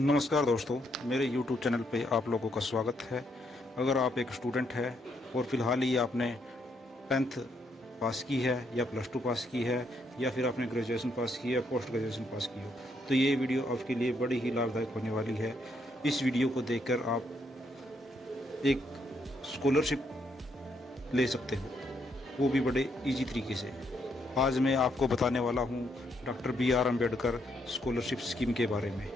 दोस्तों, मेरे YouTube चैनल पे आप लोगों का स्वागत है। अगर आप एक स्टूडेंट है और फ़िलहाल ही आपने 10th पास की है या +2 पास की है या फिर आपने ग्रेजुएशन पास की है या पोस्ट ग्रेजुएशन पास की हो, तो ये वीडियो आपके लिए बड़ी ही लाभदायक होने वाली है। इस वीडियो को देखकर आप एक स्कॉलरशिप ले सकते हो, वो भी बड़े ईजी तरीके से। आज मैं आपको बताने वाला हूँ doctor BR Ambedkar scholarship scheme के बारे में।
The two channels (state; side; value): normal; both; correlation 0.75